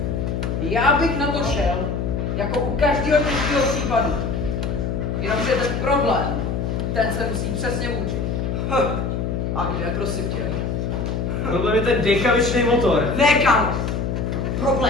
já bych na to šel, jako u každého těžkého případu. Jenomže ten problém, ten se musí přesně učit. A kde, prosím tě? Problém je ten dekavičný motor. Ne, kámo.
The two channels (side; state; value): left; noise; hum, 1 dB below the sound